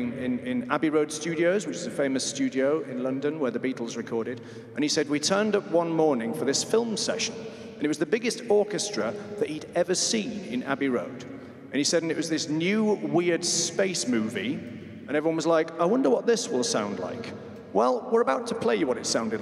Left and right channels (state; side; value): identical; both; correlation 1.00